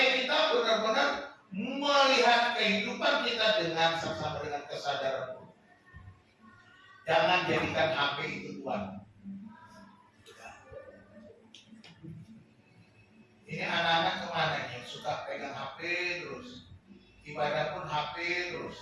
kita benar-benar melihat kehidupan kita dengan saksama, dengan kesadaran. Jangan jadikan HP itu Tuhan. Ini anak-anak kemana nih yang suka pegang HP terus, ibadah pun HP terus.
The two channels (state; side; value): identical; both; correlation 1.00